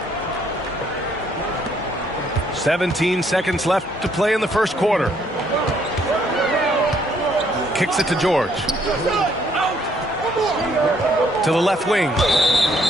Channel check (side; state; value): both; normal; correlation 0.67